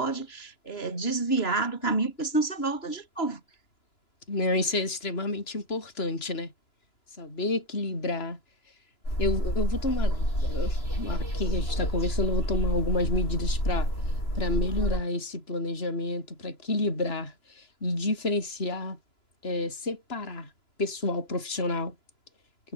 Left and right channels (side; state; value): right; late; 2.9 ms